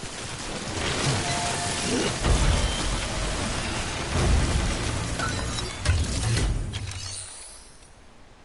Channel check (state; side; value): identical; both; correlation 1.00